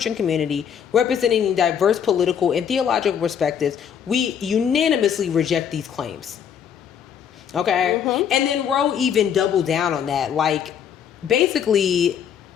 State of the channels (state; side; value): quieter; right; 8.2 dB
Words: community, representing diverse political and theological perspectives, we unanimously reject these claims. Okay? And then Roe even doubled down on that. Like, basically,